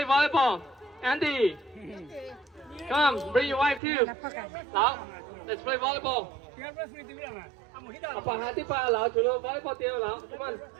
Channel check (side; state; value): left; drops out; at 3.8 s